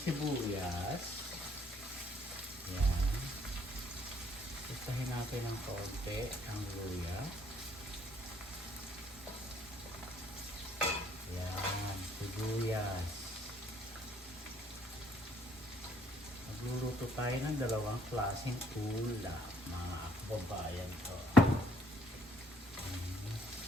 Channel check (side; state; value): both; normal; correlation 0.65